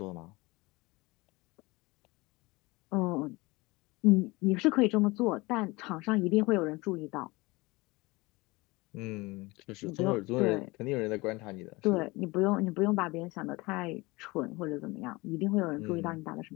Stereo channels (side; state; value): right; quieter; 23.1 dB